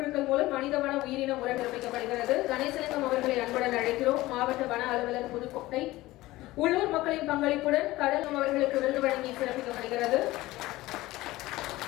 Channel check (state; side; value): quieter; right; 18.1 dB